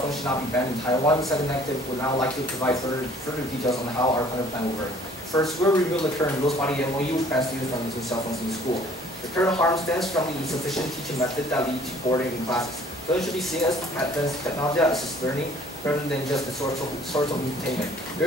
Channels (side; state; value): both; normal; correlation 0.56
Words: phones should not be banned in Taiwan. The second negative would now like to provide further details on how our current plan will work. First, we'll review the current rules-body MOU, which bans students from using cell phones in school. The current harm stems from the insufficient teaching method that lead to boredom in classes. Those should be seen as advanced technology assisted learning rather than just a source of entertainment.